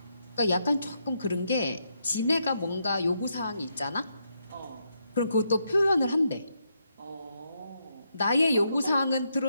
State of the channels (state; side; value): inverted; both; correlation -0.80